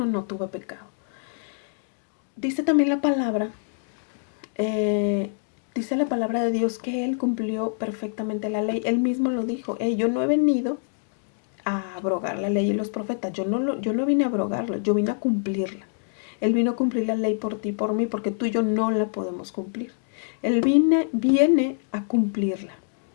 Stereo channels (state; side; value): silent; right; digital silence